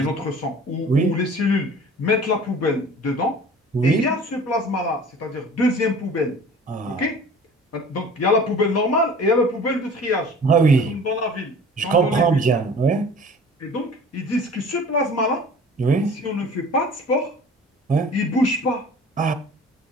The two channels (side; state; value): both; normal; correlation 0.45